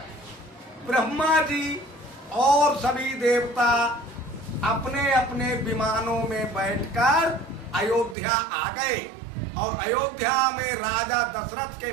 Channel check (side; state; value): left; drops out; at 8.2 s